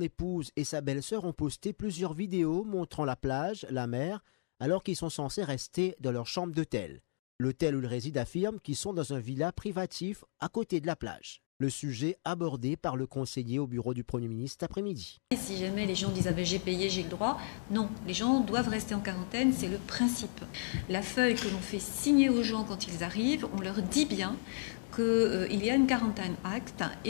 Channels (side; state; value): right; silent; digital silence